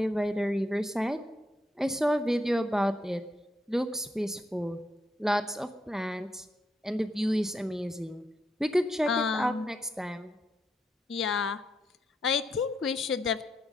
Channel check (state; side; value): normal; both; correlation 0.80